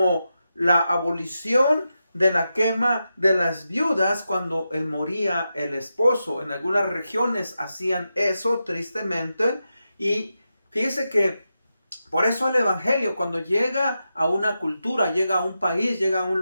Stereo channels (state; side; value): inverted; both; correlation -0.89